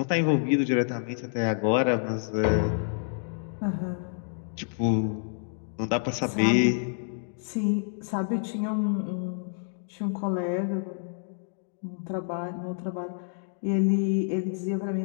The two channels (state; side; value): silent; right; digital silence